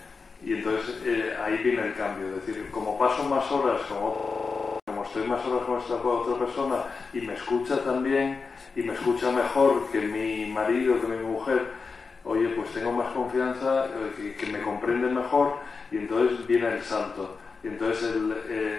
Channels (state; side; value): quieter; right; 4.7 dB